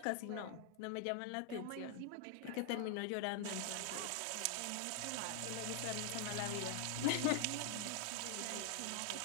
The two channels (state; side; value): different; both; correlation 0.00